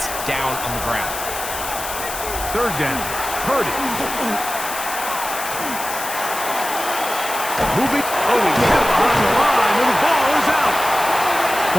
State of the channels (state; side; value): noise; left; hiss, 7 dB below the sound